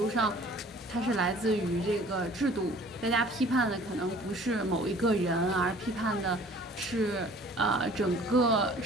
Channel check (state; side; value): normal; both; correlation 0.51